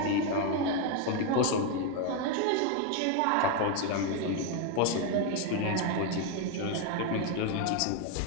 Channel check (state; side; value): different; both; correlation 0.01